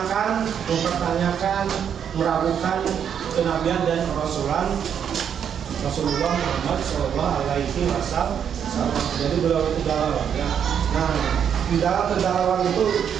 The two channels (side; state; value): left; quieter; 8.2 dB